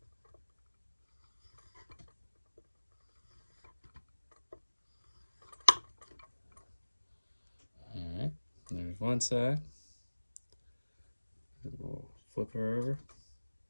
Alright, there's one side. And we'll flip her over.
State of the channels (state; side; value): inverted; both; correlation -1.00